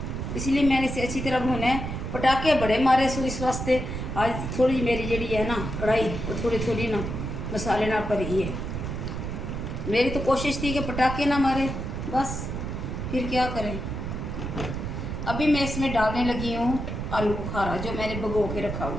इसलिए मैंने इसे अच्छी तरह भुना है। पटाखे बड़े मारे सो इस वास्ते आज थोड़ी मेरी जड़ी है ना कढ़ाई वो थोड़ी ना मसाले ना भरी है। मेरी तो कोशिश थी कि पटाखे ना मारे, बस फिर क्या करें। अभी मैं इसमें डालने लगी हूँ आलू बुखारा जो मैंने भिगो के रखा हुआ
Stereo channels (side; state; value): right; noise; rumble, 4 dB below the sound